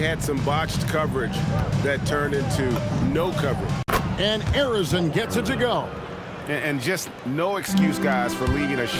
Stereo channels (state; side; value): identical; both; correlation 1.00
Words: some botched coverage that turned into no coverage. And Harrison gets it to go. And just no excuse, guys, for leaving a